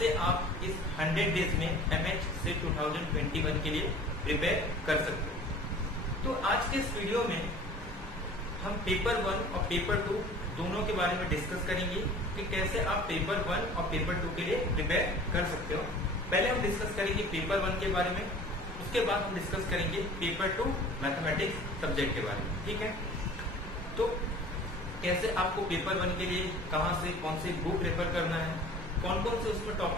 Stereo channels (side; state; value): both; normal; correlation 0.45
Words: आप इस 100 डेज में एमएच से 2021 के लिए प्रिपेयर कर सकते हो। तो आज के इस वीडियो में हम पेपर 1 और पेपर 2 दोनों के बारे में डिस्कस करेंगे कि कैसे आप पेपर 1 और पेपर 2 के लिए प्रिपेयर कर सकते हो। पहले हम डिस्कस करेंगे पेपर 1 के बारे में, उसके बाद हम डिस्कस करेंगे पेपर 2 मैथमेटिक्स सब्जेक्ट के बारे में। ठीक है, तो कैसे आपको पेपर 1 के लिए कहां से कौन से बुक रेफर करना है, कौन कौन से उसमें